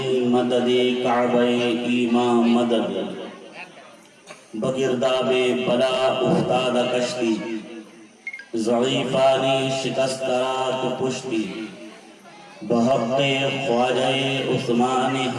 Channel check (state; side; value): identical; both; correlation 1.00